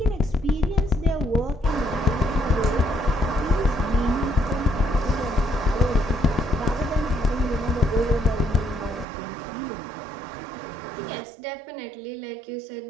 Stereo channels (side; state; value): left; drops out; at 9.1 s